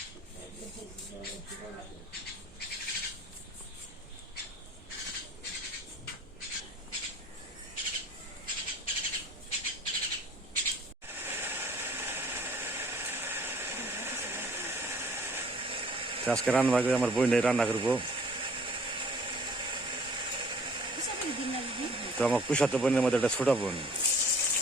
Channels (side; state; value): both; normal; correlation 0.54